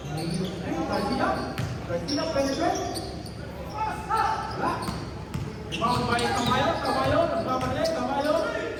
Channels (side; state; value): both; identical; correlation 1.00